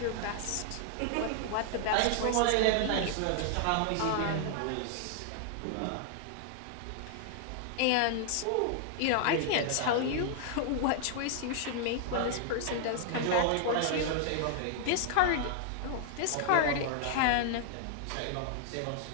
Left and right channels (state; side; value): different; both; correlation -0.01